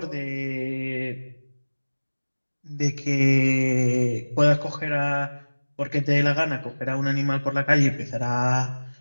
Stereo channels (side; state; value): both; inverted; correlation -1.00